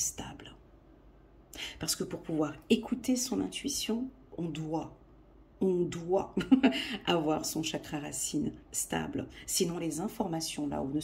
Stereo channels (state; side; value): identical; both; correlation 1.00